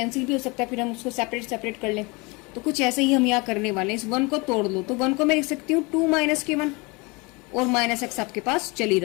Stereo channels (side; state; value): right; quieter; 27.1 dB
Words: भी हो सकता है, फिर हम उसको सेपरेट कर लें। तो कुछ ऐसे ही हम यहाँ करने वाले हैं, इस वन को तोड़ लो, तो वन को मैं लिख सकती हूँ टू माइनस के वन और माइनस एक्स आपके पास चल ही